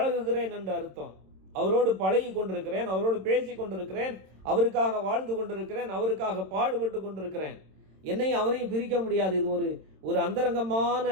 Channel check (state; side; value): late; left; 26 ms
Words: என்று அர்த்தம். அவரோடு பழகி கொண்டிருக்கிறேன், அவரோடு பேசி கொண்டிருக்கிறேன், அவருக்காக வாழ்ந்து கொண்டிருக்கிறேன், அவருக்காக பாடுபட்டு கொண்டிருக்கிறேன். என்னையும் அவரையும் பிரிக்க முடியாது. இது ஒரு அந்தரங்கமான